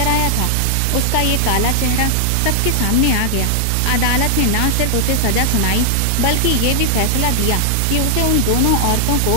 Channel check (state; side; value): different; both; correlation 0.00